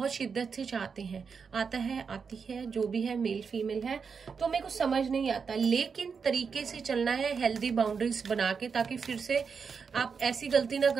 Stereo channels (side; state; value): left; quieter; 5.8 dB